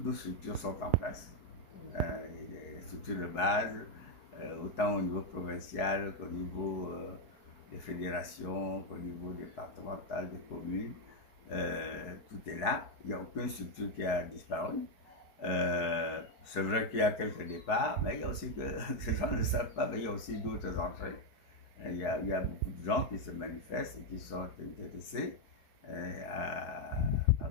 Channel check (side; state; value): right; late; 4.7 ms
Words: nos structures sont en place. Les structures de base, autant au niveau provincial qu'au niveau des fédérations, qu'au niveau départemental, des communes. Tout est là. Il n'y a aucune structure qui a disparu. C'est vrai qu'il y a quelques départs, mais il y a aussi que ces gens ne le savent pas, mais il y a aussi d'autres entrées. Il y a beaucoup de gens qui se manifestent et qui sont intéressés à